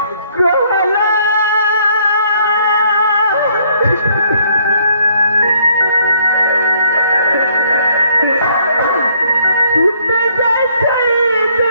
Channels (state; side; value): inverted; both; correlation -0.65